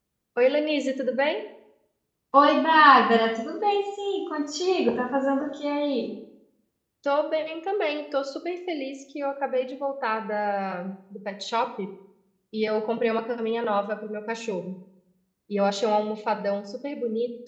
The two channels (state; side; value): identical; both; correlation 1.00